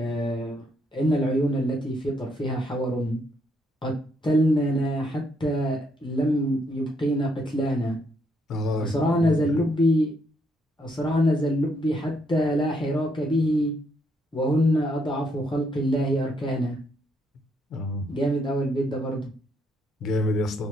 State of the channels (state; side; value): normal; both; correlation 0.74